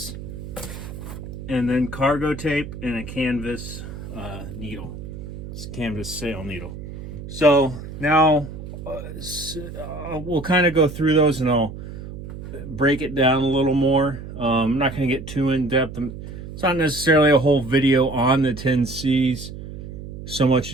and then cargo tape and a canvas needle. It's a canvas sail needle. So now we'll kind of go through those and I'll break it down a little more. I'm not going to get too in depth. It's not necessarily a whole video on the 10 C's, so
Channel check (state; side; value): noise; right; hum, 11 dB below the sound